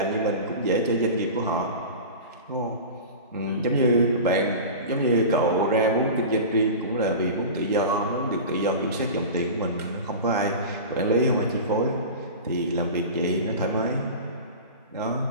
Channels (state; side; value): inverted; both; correlation -0.32